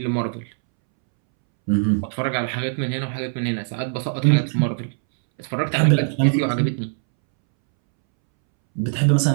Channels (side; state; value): left; silent; 65 dB below the other